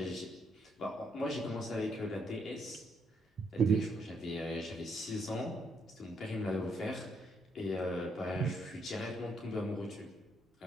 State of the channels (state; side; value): normal; both; correlation 0.74